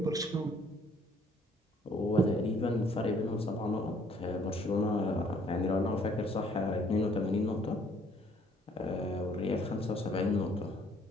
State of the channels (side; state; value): both; normal; correlation 0.62